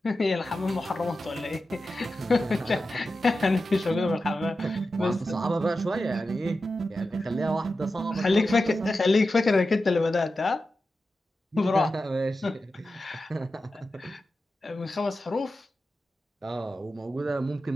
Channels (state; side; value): normal; both; correlation 0.92